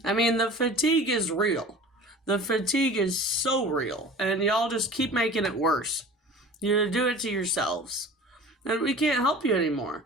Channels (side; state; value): both; normal; correlation 0.41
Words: I mean, the fatigue is real. The fatigue is so real, and y'all just keep making it worse. You do it to yourselves, and we can't help you anymore.